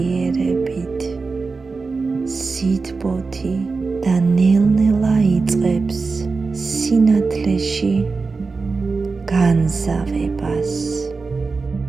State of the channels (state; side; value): quieter; left; 4.3 dB